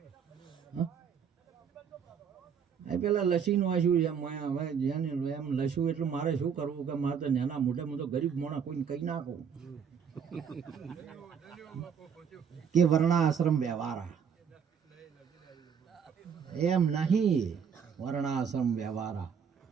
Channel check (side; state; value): left; quieter; 7.1 dB